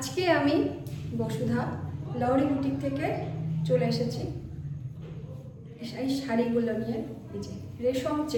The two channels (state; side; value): identical; both; correlation 1.00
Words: আমি বসুধা লহরি বুটিক থেকে চলে এসেছি এই শাড়িগুলো নিয়ে। এই যে